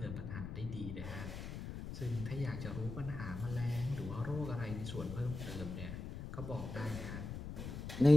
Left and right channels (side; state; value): left; noise; rumble, 7 dB below the sound